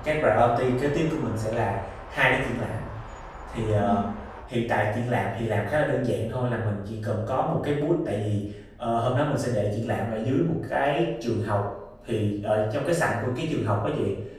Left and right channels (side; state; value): both; identical; correlation 1.00